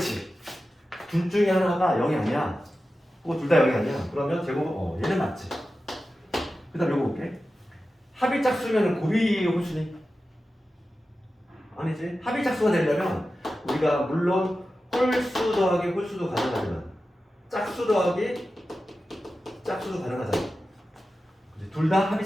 둘 중에 하나가 0이 아니야. 혹은 둘 다 0이 아니야. 그러면 제곱은 얘는 맞지. 그 다음 요거 볼게. 합이 짝수면 곱이 홀수니? 아니지. 합이 짝수가 되려면 우리가 물론 홀수 더하기 홀수도 가능하지만 짝수 더하기 짝수도 가능하잖아. 둘 다 합이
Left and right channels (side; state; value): both; normal; correlation 0.93